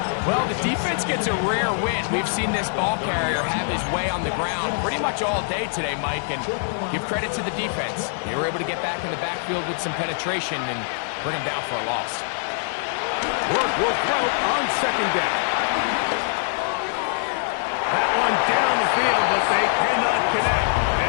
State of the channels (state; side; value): silent; right; digital silence